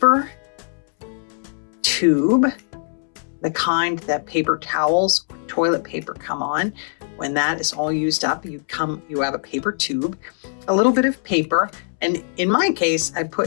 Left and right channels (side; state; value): right; silent; 65 dB below the other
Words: tube, the kind that paper towels or toilet paper come on. When that is all used up, you have a paper tube, a little bit of paper, and in my case, I